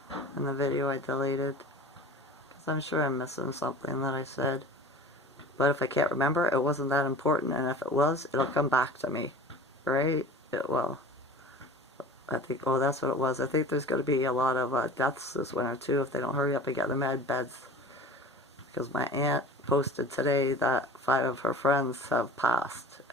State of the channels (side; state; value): both; normal; correlation 0.39